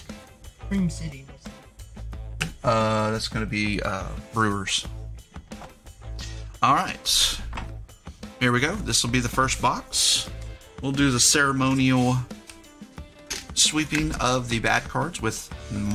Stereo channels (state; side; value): identical; both; correlation 1.00